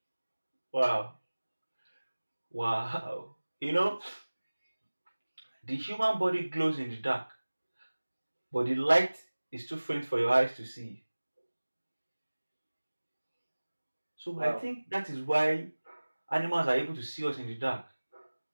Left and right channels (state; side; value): inverted; both; correlation -1.00